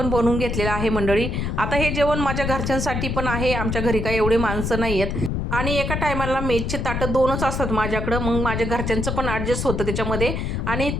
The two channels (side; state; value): left; noise; rumble, 2 dB below the sound